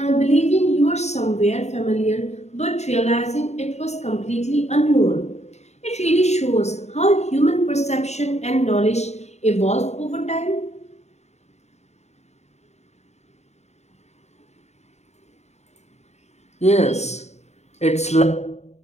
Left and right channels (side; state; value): right; late; 0.32 ms